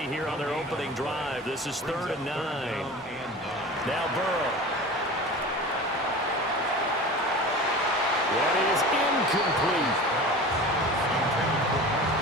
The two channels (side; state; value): both; normal; correlation 0.35